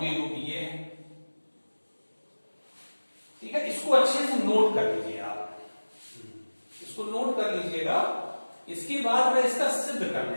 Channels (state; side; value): inverted; both; correlation -1.00